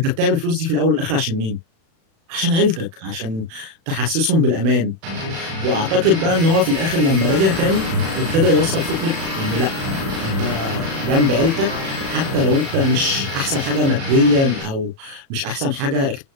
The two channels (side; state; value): left; late; 36 ms